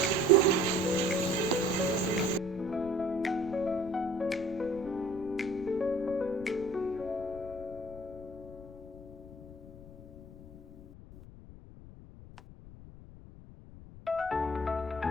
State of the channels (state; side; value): noise; left; rumble, 16 dB below the sound